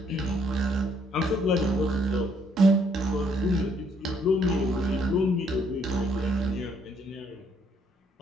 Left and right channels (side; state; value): both; normal; correlation 0.68